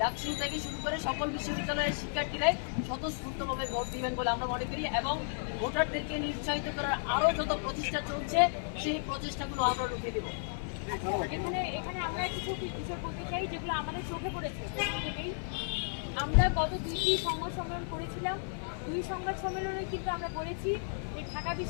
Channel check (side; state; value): right; silent; 55 dB below the other